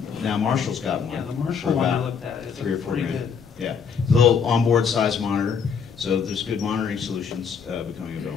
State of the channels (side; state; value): right; quieter; 6.4 dB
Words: now Marshall's got one. Yeah, the Marshall for one I about looked at is $3 or $4 pretty grand. good. Yeah, little onboard size monitor. So there's good monitoring solutions becoming